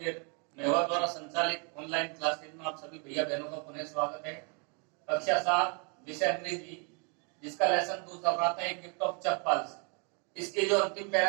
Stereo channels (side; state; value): left; quieter; 35.9 dB